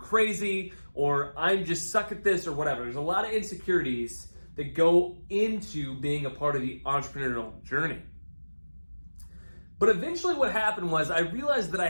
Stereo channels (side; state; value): both; inverted; correlation -1.00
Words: or I'm just suck at this or whatever. There's a lot of insecurities that go into being a part of the entrepreneurial journey. But eventually what happened was I realized that I